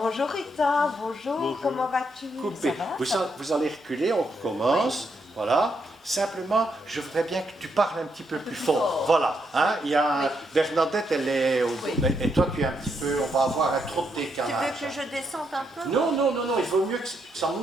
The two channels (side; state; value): both; normal; correlation 0.78